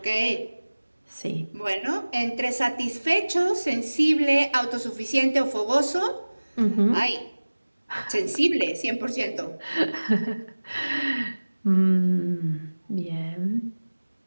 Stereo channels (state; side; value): inverted; both; correlation -1.00